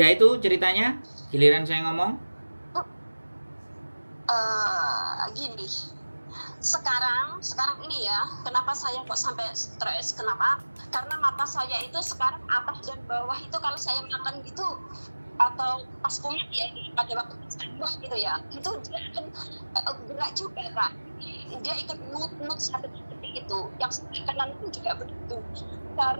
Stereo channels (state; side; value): inverted; both; correlation -1.00